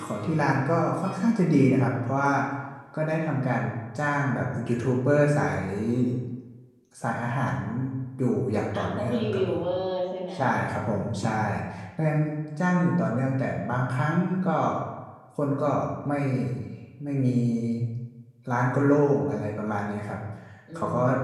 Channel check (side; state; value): both; identical; correlation 1.00